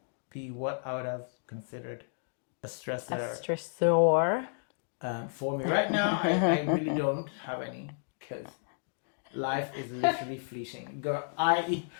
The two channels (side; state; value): right; silent; digital silence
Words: be what I would have considered a stressor. For me right now, I really don't have any, because life is literally fleeting. Girl, I